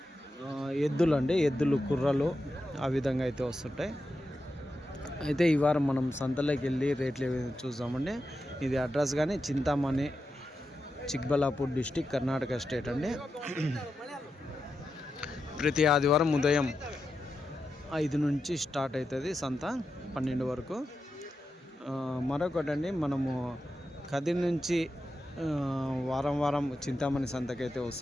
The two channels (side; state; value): both; normal; correlation 0.88